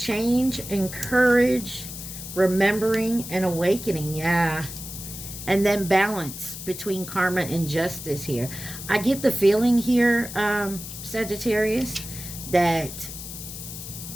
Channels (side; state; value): left; noise; hiss, 10 dB below the sound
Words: and courage, remembering and awakening. Yeah. And then balance between karma and justice here. I get the feeling here, Sagittarius, that